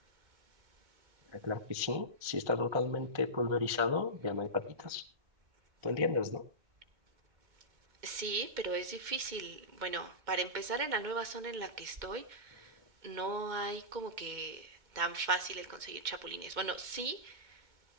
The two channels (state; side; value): late; left; 2.1 ms